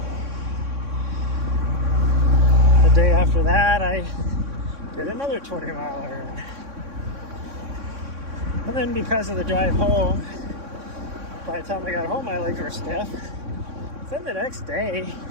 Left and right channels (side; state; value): left; late; 3.6 ms